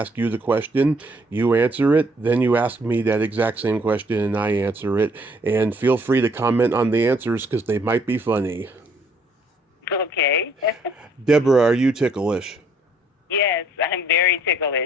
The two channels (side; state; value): both; normal; correlation 0.65